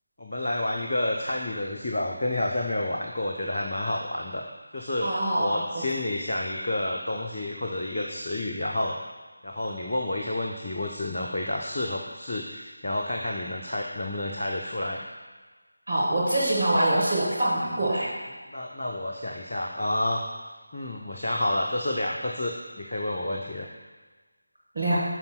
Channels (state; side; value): inverted; both; correlation -0.89